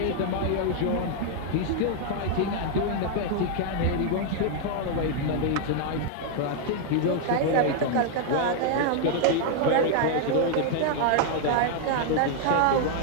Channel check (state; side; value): different; both; correlation 0.00